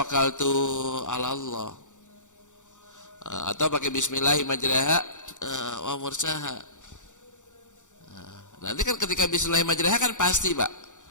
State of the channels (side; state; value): right; late; 0.85 ms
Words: ala Allah. Atau pakai Bismillah majraha wa mursaha. Nanti kan ketika Bismillah majraha kan pasti Pak.